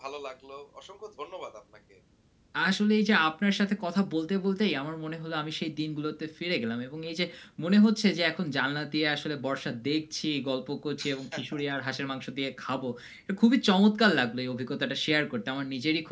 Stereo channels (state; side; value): identical; both; correlation 1.00